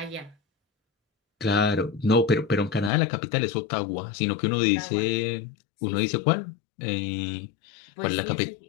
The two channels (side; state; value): right; drops out; at 2.9 s